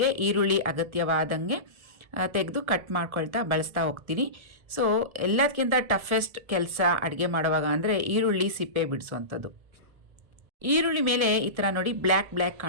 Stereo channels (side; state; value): left; late; 1.3 ms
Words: ಈರುಳ್ಳಿ ಅಗತ್ಯವಾದಂಗೆ ತೆಗೆದು ಕಟ್ ಮಾಡ್ಕೊಳ್ತಾ ಬಳಸ್ತಾ ಹೋಗ್ತೀನಿ. ಸೊ ಎಲ್ಲದಕ್ಕಿಂತ ಟಫೆಸ್ಟ್ ಕೆಲಸ ಅಡುಗೆ ಮಾಡುವಾಗ ಅಂದರೆ ಈರುಳ್ಳಿ ಸಿಪ್ಪೆ ಬಿಡಿಸೋವಂಥದ್ದು. ಈರುಳ್ಳಿ ಮೇಲೆ ಈ ಥರ ನೋಡಿ ಬ್ಲ್ಯಾಕ್